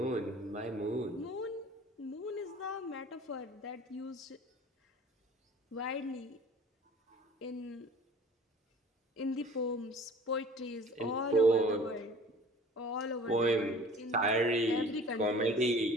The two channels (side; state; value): both; normal; correlation 0.46